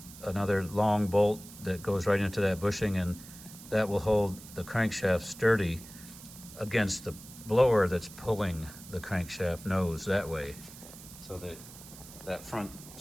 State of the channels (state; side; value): noise; right; hiss, 17 dB below the sound